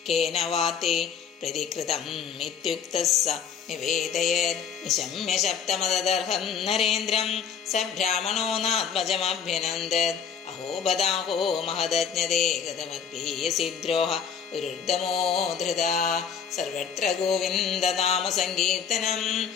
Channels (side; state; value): right; quieter; 7.1 dB